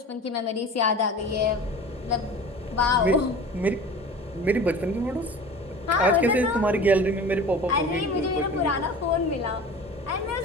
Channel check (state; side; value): normal; both; correlation 0.38